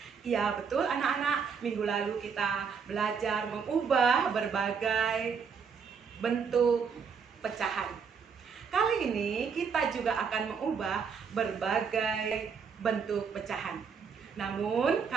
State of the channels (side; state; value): left; quieter; 6.1 dB